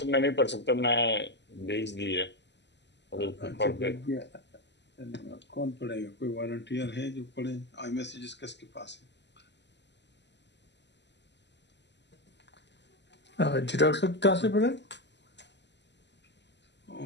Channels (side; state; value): right; late; 0.51 ms